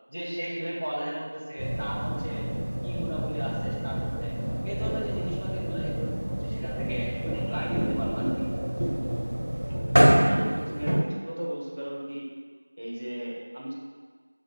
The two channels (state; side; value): inverted; both; correlation -1.00